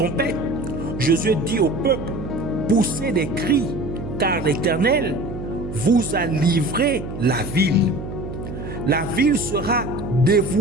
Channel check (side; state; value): right; noise; hum, 8 dB below the sound